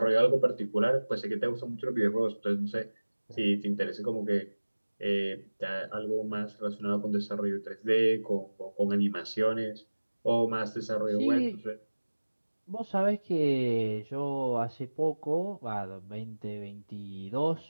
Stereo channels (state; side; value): inverted; both; correlation -1.00